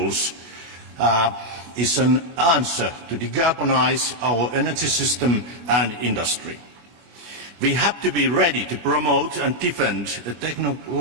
is an answer to decarbonize our energy system and industry. We have to be ready to promote and defend a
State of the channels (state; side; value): late; left; 25 ms